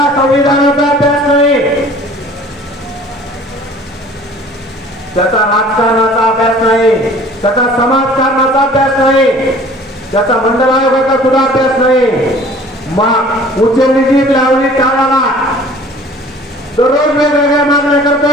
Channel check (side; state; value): both; normal; correlation 0.49